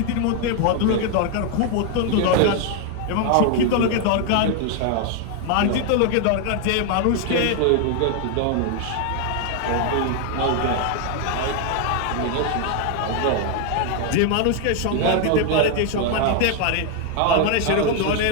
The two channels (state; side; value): different; both; correlation 0.01